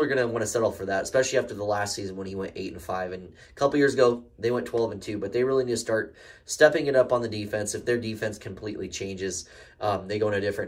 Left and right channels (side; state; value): both; identical; correlation 1.00